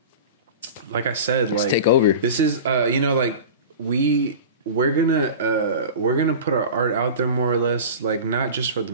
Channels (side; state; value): both; inverted; correlation -0.33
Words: I said, like, let's take over. This is, like we're gonna put our art out there more or less, like not just for the